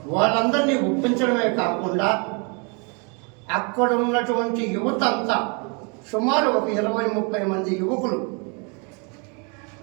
వాళ్ళందరినీ ఒప్పించడమే కాకుండా అక్కడ ఉన్నటువంటి యువత అంతా సుమారు ఒక 20-30 మంది యువకులు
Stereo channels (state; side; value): quieter; left; 34.4 dB